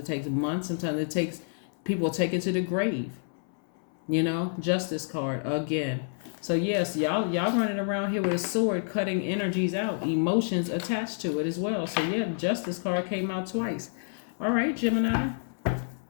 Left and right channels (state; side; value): silent; right; 59 dB below the other